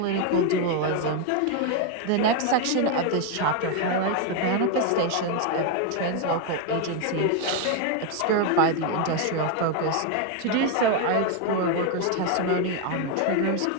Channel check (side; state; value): both; different; correlation 0.01